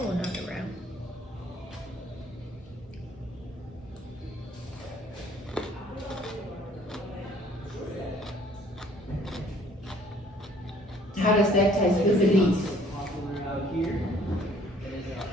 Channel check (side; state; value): both; normal; correlation 0.58